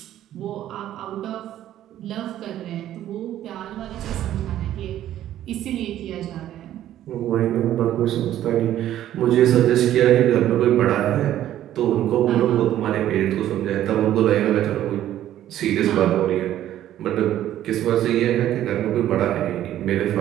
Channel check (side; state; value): left; quieter; 12.3 dB